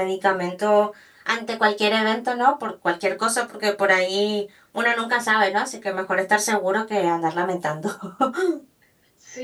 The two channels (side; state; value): both; identical; correlation 1.00